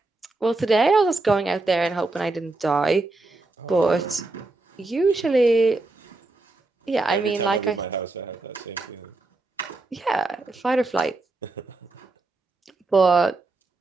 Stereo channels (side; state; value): left; quieter; 3.2 dB